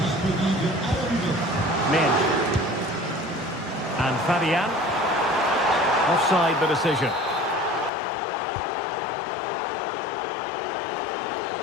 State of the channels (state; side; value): drops out; right; at 7.9 s